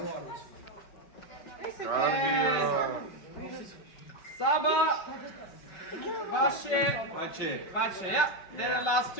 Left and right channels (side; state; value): right; late; 5.3 ms